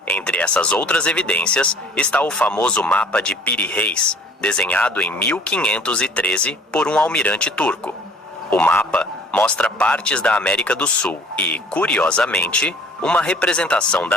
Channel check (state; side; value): normal; both; correlation 0.52